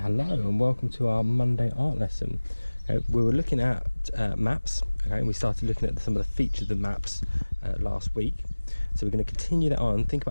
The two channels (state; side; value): inverted; both; correlation -1.00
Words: and welcome to our Monday art lesson. Okay, we were looking at maps, okay, and we started looking at some of the features of maps last week. So we're going to continue that on, think